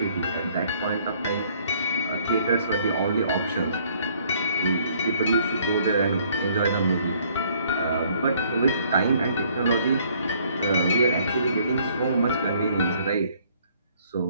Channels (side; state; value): both; inverted; correlation -0.63